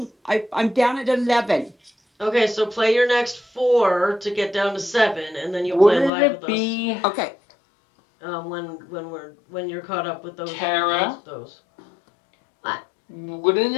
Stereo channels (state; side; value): drops out; right; at 6.1 s